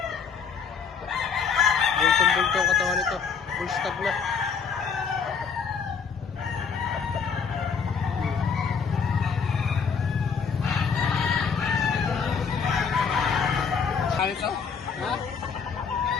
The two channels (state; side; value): quieter; right; 6.0 dB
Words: Bultong-bultong ang katawan nito. Full stag na. Ano ito? Ha?